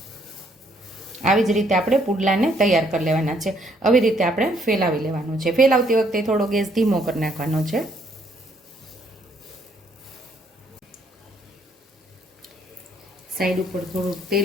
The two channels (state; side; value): normal; both; correlation 0.68